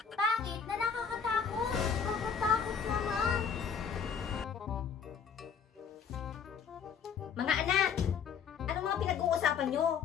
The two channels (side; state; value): right; quieter; 6.7 dB